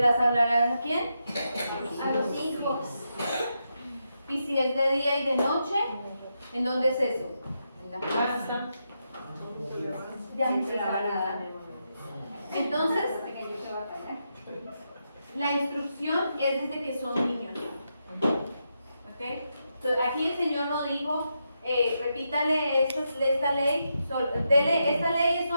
las hablarán a quién? A los hijos. ¿Y si es de día y de noche? ¿En dónde es eso? En la casa. Ya se la van a dar. Entonces, la instrucción es desde que son niños. ¿Okay? Entonces, aquí el Señor nos dijo, repítale esta ley, esta ley es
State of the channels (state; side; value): inverted; both; correlation -0.84